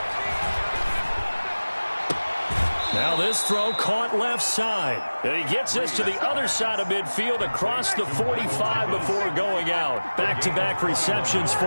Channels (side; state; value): both; inverted; correlation -1.00